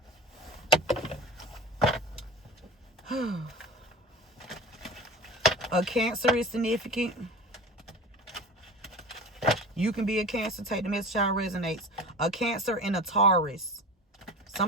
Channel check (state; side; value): normal; both; correlation 0.34